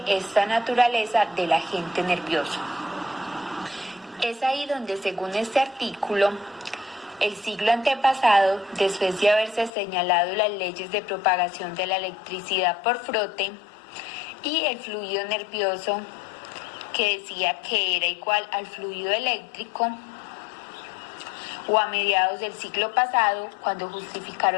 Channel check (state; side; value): drops out; right; at 9.7 s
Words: esta naturaleza del agente nervioso? Es ahí donde, según este artículo, el siglo antepasado, después de haberse señalado las leyes de propagación de la electricidad por frote y el fluido nervioso, que decía que era igual al fluido eléctrico, o a mediados del siglo pasado, cuando